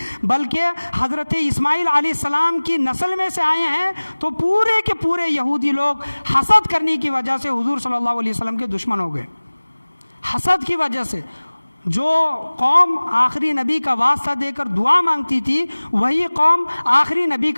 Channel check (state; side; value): inverted; both; correlation -1.00